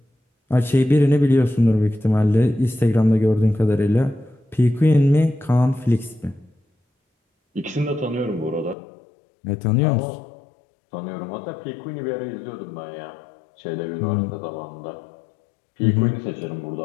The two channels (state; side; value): drops out; right; at 8.8 s